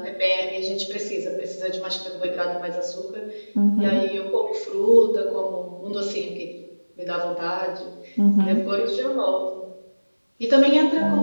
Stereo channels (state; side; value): inverted; both; correlation -1.00